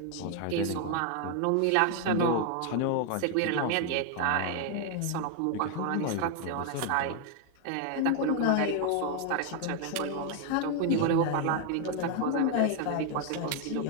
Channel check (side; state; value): both; different; correlation 0.00